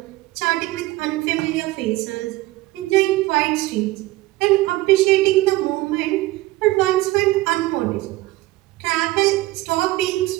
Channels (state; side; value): quieter; left; 18.8 dB